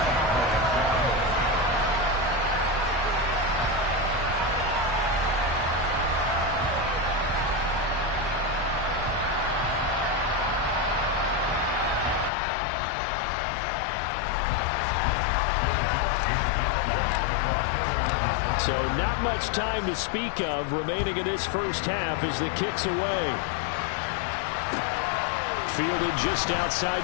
So not much time to speak of remaining in this first half as the kick's away. Fielded just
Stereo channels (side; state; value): right; drops out; at 12.3 s